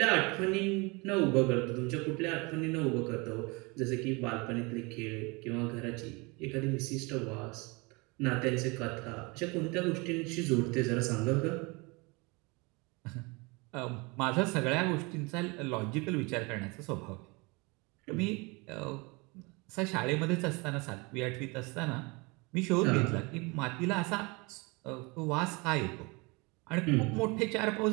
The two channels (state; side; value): quieter; left; 27.4 dB